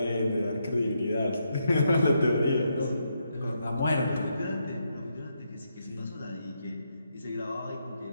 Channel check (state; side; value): inverted; both; correlation -0.80